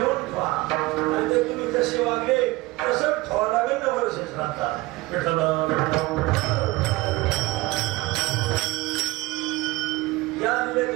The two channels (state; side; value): quieter; left; 20.7 dB